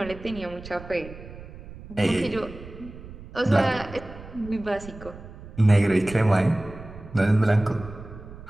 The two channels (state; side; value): noise; right; rumble, 15 dB below the sound